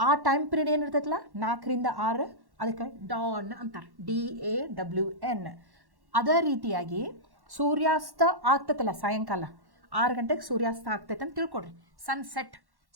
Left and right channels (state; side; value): late; left; 1.1 ms